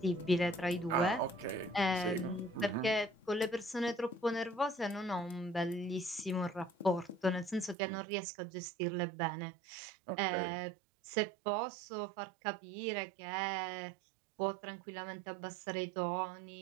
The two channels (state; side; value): drops out; left; at 7.8 s